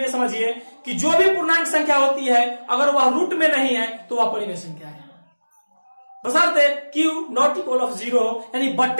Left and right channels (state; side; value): inverted; both; correlation -1.00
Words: समझिए कि जो भी पूर्णांक संख्या होती है अगर वह रूट में नहीं है तो वह परिमेय संख्या है, बशर्ते Q ≠ 0, यानी